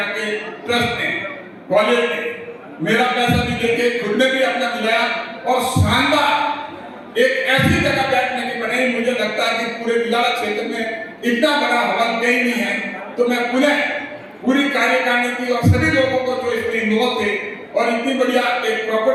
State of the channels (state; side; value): identical; both; correlation 1.00